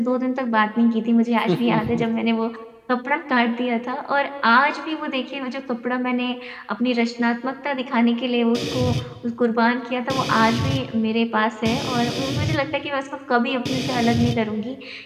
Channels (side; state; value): both; identical; correlation 1.00